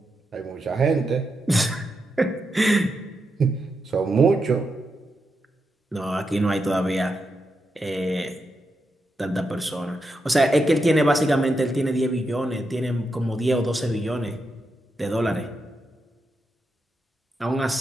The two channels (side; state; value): both; normal; correlation 0.85